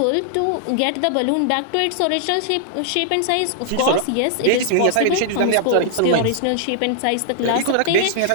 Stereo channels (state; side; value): different; both; correlation -0.01